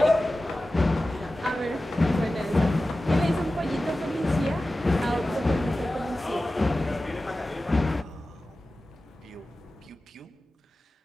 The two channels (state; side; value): normal; both; correlation 0.95